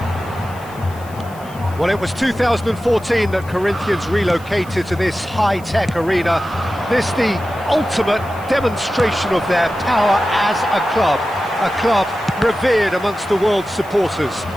Well, it was 2014 that Corinthians relocated to this high-tech arena. This the ultimate demonstration of their power as a club revered amongst the world's supporters.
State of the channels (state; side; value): noise; left; hiss, 23 dB below the sound